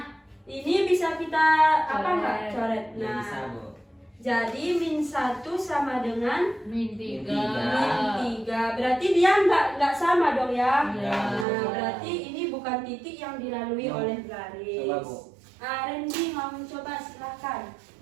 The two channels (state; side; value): drops out; left; at 11.5 s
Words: ini bisa kita apa enggak coret? Ya, Nah, bisa, Bu. jadi -1 sama dengan Min Min 3. Berarti dia enggak sama dong ya. Iya. Nah, berarti ini bukan titik yang dilalui Ya. oleh garis. Coba, Bu. Randy mau mencoba, silakan.